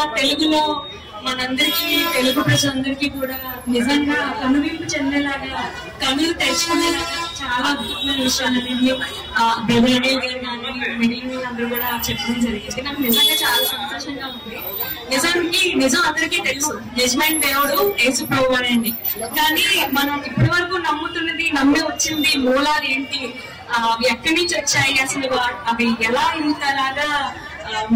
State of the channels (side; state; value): both; identical; correlation 1.00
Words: తెలుగులో మనందరికీ తెలుగు ప్రజలందరికీ కూడా నిజంగా కనువింపు చెందేలాగా కనులు తెచ్చుకునేలాగా చాలా అద్భుతమైన విషయాలని బ్రదర్ అనిల్ గారు కానీ మిగిలిన వాళ్ళందరూ కూడా చెప్పడం జరిగింది. నాకు నిజంగా చాలా సంతోషంగా ఉంది. నిజం అందరికీ తెలుసు, నిజమైన దేవుడు యేసు ప్రభువు అండి. కానీ మనం ఇప్పటి వరకు నమ్ముతున్నది, నమ్మి వచ్చింది మూలాలు ఏంటి, ఎక్కడి నుంచి వచ్చాయి, అసలు అవి ఎలా ఇంతలాగా